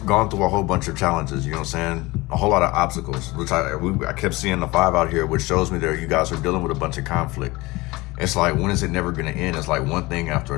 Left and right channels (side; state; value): right; quieter; 21.8 dB